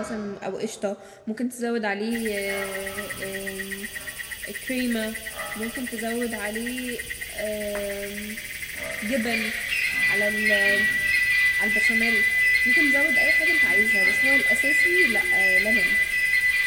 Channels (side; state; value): both; identical; correlation 1.00